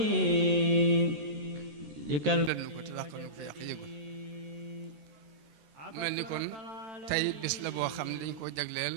likal len ko te dàq nu ko yàq yëgul mel ni kon tey bis la boo xam ne dañ koo jagleel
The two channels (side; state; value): left; late; 14 ms